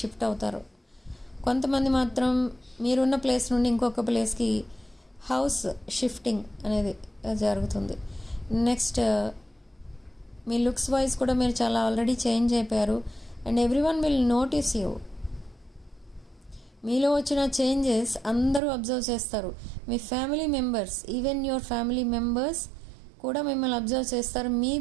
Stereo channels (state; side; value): drops out; left; at 18.6 s